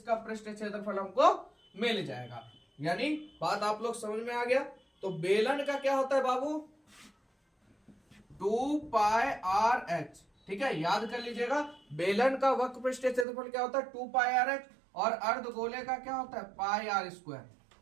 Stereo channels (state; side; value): drops out; left; at 13.2 s